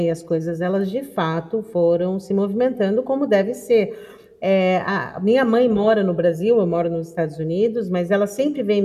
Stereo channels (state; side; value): identical; both; correlation 1.00